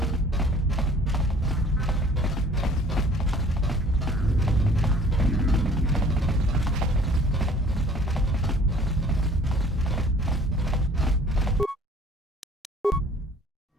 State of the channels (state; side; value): normal; both; correlation 0.52